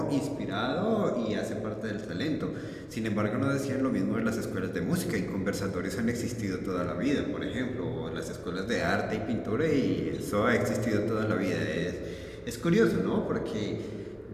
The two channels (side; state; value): both; identical; correlation 1.00